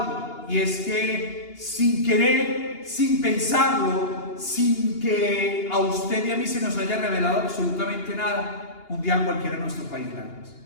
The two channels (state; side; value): late; right; 2.8 ms